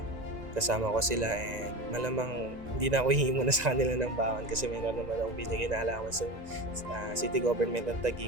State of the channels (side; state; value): left; late; 1.9 ms